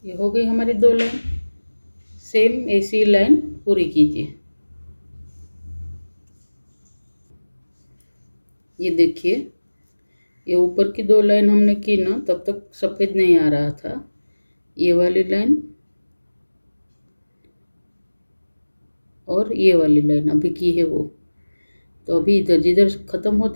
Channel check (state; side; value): inverted; both; correlation -1.00